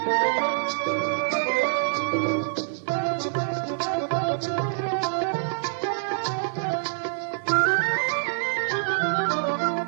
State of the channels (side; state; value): left; silent; 61 dB below the other